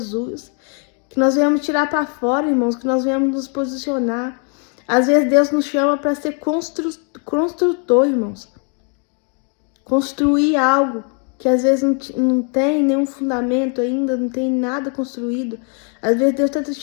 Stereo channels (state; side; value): quieter; right; 39.7 dB